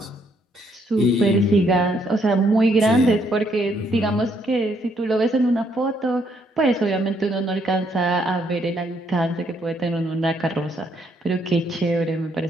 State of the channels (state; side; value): normal; both; correlation 0.71